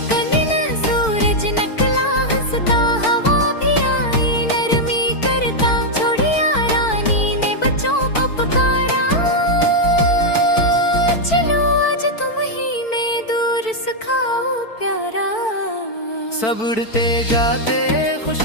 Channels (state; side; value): late; right; 4.5 ms